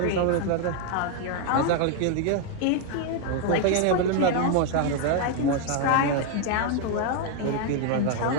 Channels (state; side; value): different; both; correlation 0.00